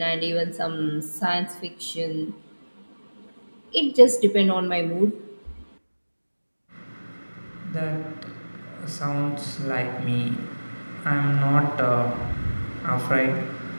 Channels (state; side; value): inverted; both; correlation -1.00